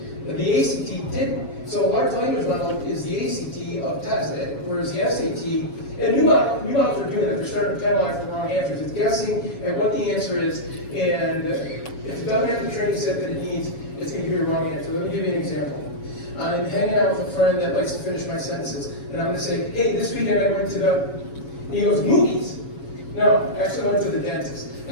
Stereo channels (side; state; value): right; late; 7.2 ms